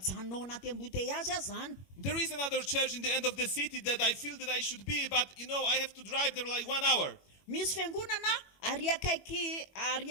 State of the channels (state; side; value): late; right; 21 ms